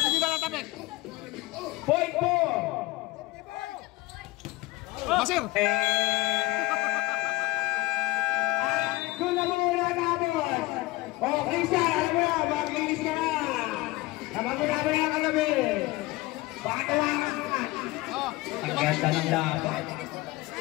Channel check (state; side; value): quieter; right; 20.0 dB